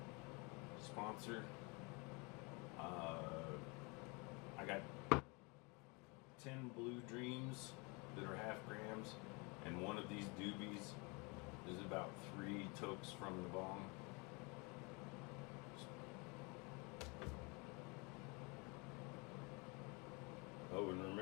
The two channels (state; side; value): quieter; right; 29.6 dB